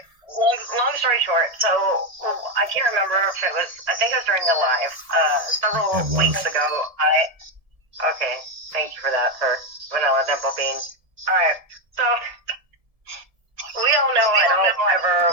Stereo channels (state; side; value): late; left; 1.7 ms